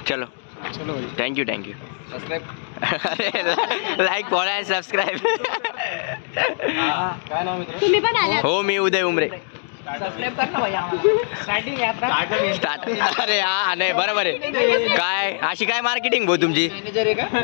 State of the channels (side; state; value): right; silent; 64 dB below the other